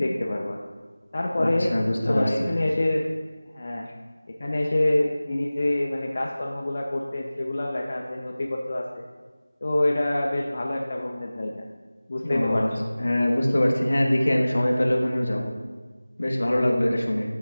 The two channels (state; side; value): inverted; both; correlation -0.98